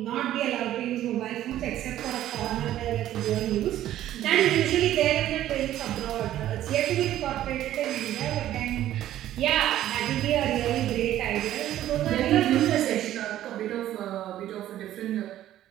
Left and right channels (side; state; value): left; quieter; 12.9 dB